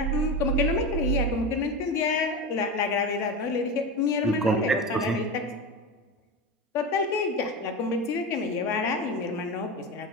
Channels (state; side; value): normal; both; correlation 0.22